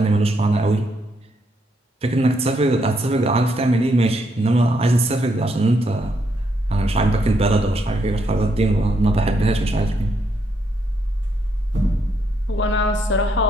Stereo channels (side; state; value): both; normal; correlation 0.76